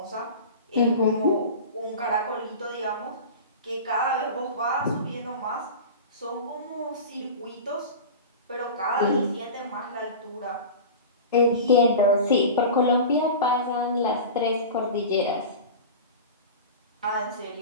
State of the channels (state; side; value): inverted; both; correlation -0.32